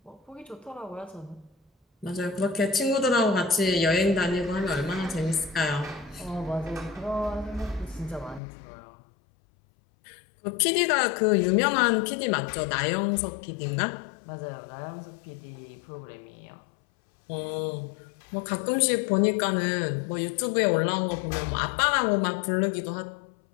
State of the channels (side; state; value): right; drops out; at 8.4 s